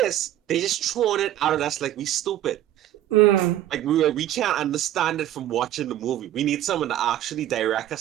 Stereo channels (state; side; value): quieter; left; 12.7 dB